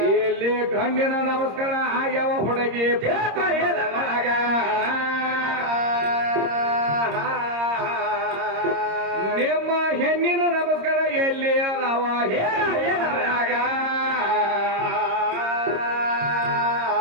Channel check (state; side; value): late; left; 26 ms